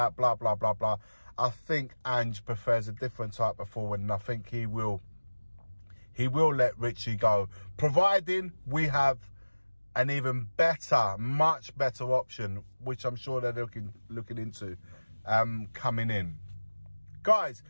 blah, blah, blah, blah, I think Ange prefers a different type of forward, and I think he will let Richie go, providing we have an even better, much better option, which I'm sure they're looking into coming in. Guys,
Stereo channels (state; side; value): inverted; both; correlation -1.00